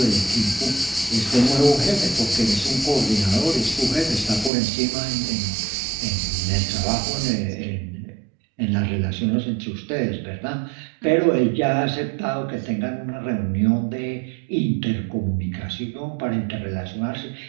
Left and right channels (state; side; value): drops out; left; at 4.5 s